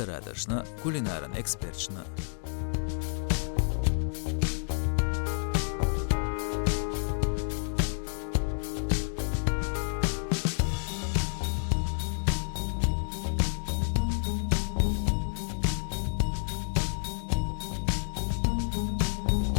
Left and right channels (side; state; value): right; silent; digital silence